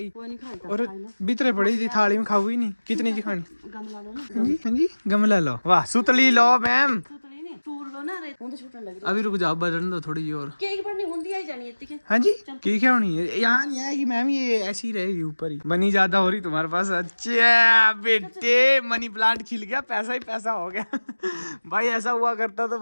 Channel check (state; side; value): inverted; both; correlation -1.00